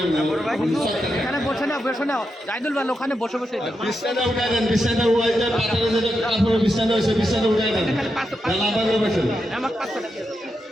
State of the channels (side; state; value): both; normal; correlation 0.86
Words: এখানে বসে না বসে না জাইদুল ভাই ওখানে বসে বসে বিছানা উঠাই দেন, বিছানা উঠাই দেন, পাতালে যে কাপড় বিছানা হইছে বিছানা উঠাই দেন, লাভ করে বসেন, আমার 500 টাকা